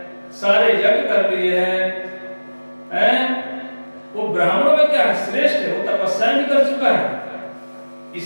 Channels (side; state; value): both; inverted; correlation -1.00